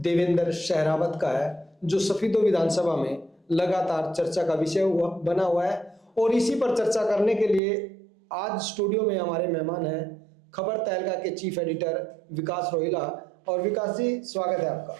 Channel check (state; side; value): drops out; left; at 7.6 s